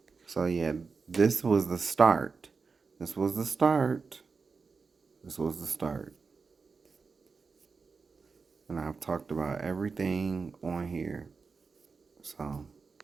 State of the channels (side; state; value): left; quieter; 4.8 dB